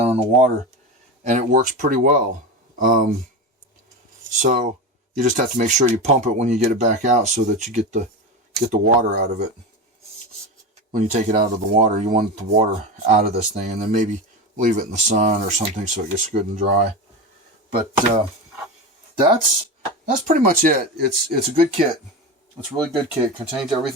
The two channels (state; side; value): normal; both; correlation 0.22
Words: in the water, and it works pretty well. So you just have to make sure you pump it when you get it back out so that you get the water out of it. When you take it out of the water, you want the water out of this thing, and then maybe leave it in the sun or something so it gets good and dry. But that's pretty much it. It's a good kit. It's a really good kit. Contains